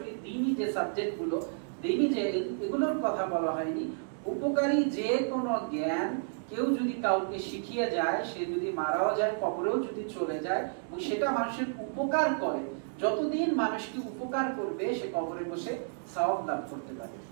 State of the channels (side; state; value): left; silent; 57 dB below the other